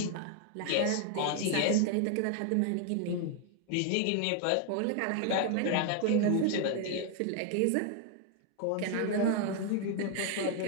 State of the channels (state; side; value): different; both; correlation 0.00